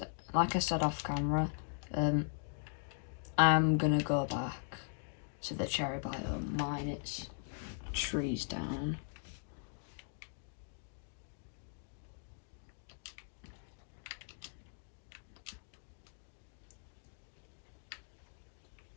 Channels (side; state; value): right; silent; digital silence